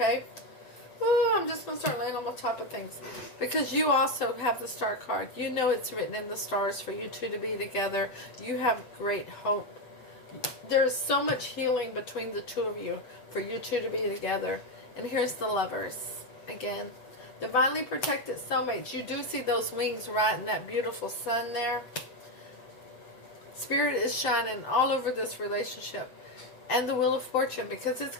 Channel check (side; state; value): right; late; 7.9 ms